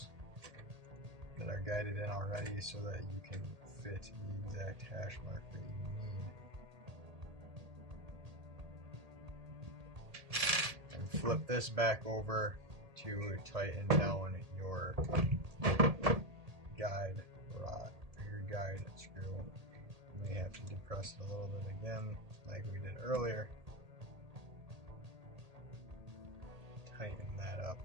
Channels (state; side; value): late; left; 1.8 ms